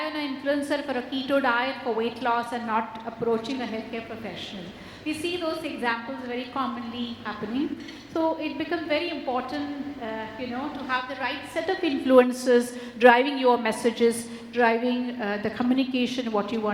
on an influencer for a keto diet for weight loss and not approaching a healthcare professional. We see those examples very commonly happening. So it becomes very important, to have the right set of influencers driving your messages, driving the communication, what you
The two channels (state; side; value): identical; both; correlation 1.00